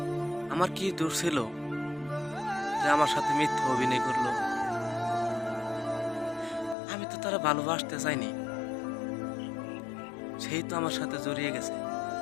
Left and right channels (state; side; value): drops out; right; at 6.8 s